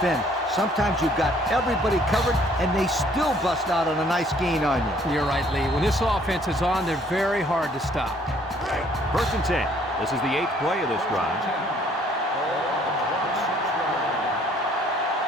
Sometimes you've got everybody covered, and they still bust out on a nice gain on you. You're right, Lee. When this offense is on, they're very hard to stop. 1st and 10. This is the 8th play of this drive.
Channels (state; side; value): normal; both; correlation 0.61